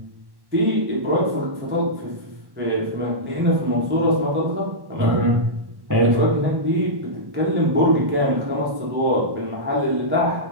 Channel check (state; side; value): late; left; 1.1 ms